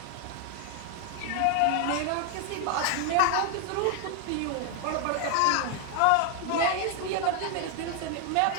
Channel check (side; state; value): both; different; correlation 0.00